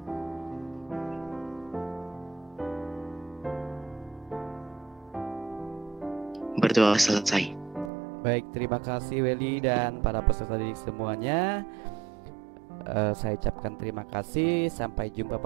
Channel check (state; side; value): drops out; left; at 7.9 s